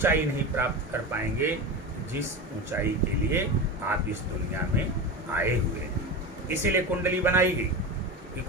नहीं प्राप्त कर पाएंगे जिस ऊंचाई के लिए आप इस दुनिया में आए हुए हैं। इसीलिए कुंडली बनाई गई कि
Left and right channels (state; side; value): normal; both; correlation 0.24